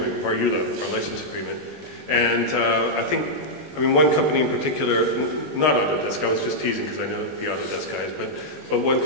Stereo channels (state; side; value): late; left; 20 ms